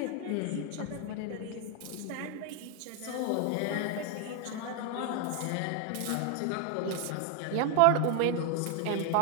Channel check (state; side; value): different; both; correlation 0.00